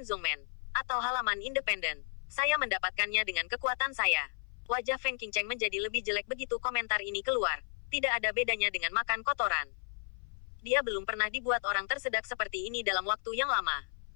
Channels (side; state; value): right; silent; 55 dB below the other